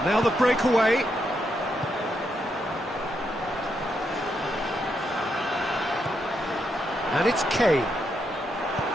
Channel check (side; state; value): both; normal; correlation 0.80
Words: now the breakaway. And it's Kane.